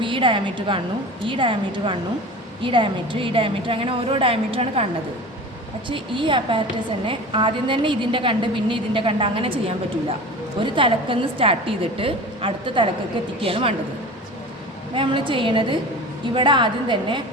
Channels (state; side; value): normal; both; correlation 0.35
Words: ഈ ഡയമീറ്റർ കാണുന്നു, ഈ ഡയമീറ്റർ കാണുന്നു, ഈ ഡയമീറ്റർ അങ്ങനെ ഓരോ ഡയമീറ്ററാണ് കാണുന്നത്. പക്ഷേ ഈ അപ്പാരറ്റസ് തന്നെ ആദ്യം തന്നെ ഇതിൻ്റെ കണ്ട് പിന്നെ ഇതിൻ്റെ കണ്ട് അങ്ങനെ ചെയ്യാൻ പറ്റില്ല. ഒരു തലക്കെന്ന് സ്റ്റാർട്ട് ചെയ്തിട്ട് അടുത്ത തലക്കൊക്കെ എത്തിക്കുകയാണ് വേണ്ടത്. അപ്പോൾ നമ്മൾ ചെയ്യണത് ഇവിടെ ആദ്യം തന്നെ